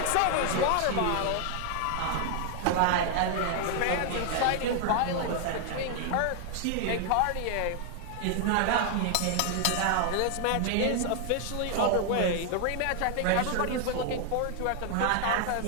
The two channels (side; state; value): both; different; correlation 0.00